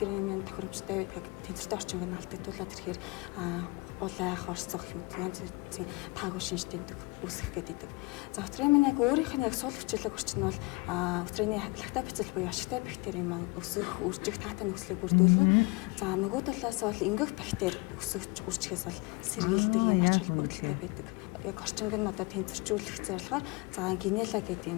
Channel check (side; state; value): right; quieter; 26.1 dB